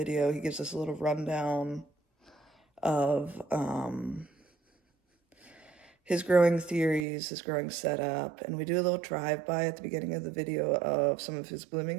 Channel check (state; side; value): drops out; left; at 7.1 s